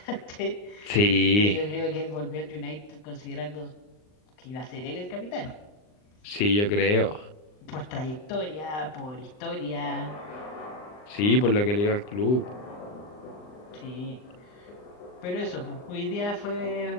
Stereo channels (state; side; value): late; right; 39 ms